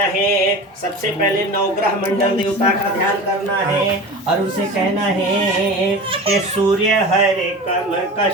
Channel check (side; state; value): both; normal; correlation 0.32